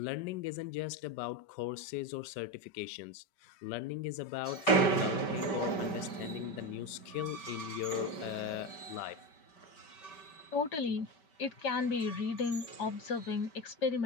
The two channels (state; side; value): late; right; 5.2 ms